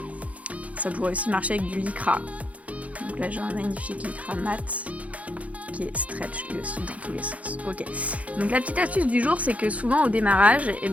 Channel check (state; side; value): late; left; 0.067 ms